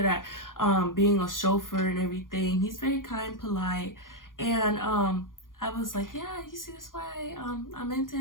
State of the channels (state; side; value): late; right; 0.90 ms